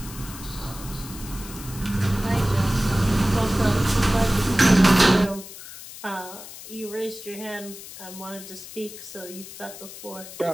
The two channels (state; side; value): noise; left; hiss, 14 dB below the sound